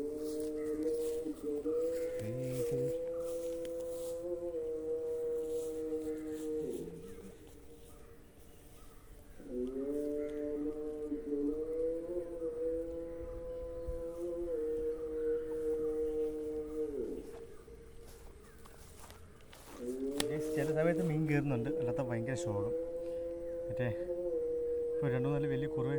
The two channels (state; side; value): identical; both; correlation 1.00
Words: ചില സമയത്ത് മീൻ കയറുന്നുണ്ട്, അല്ലാത്ത ഭയങ്കര ശോകം. മറ്റേ ഇപ്പോൾ 2-4 വലിയ കുറവ്